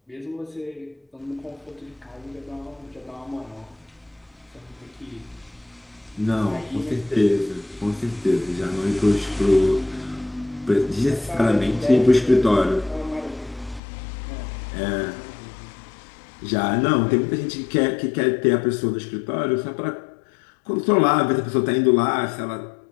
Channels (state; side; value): drops out; right; at 13.8 s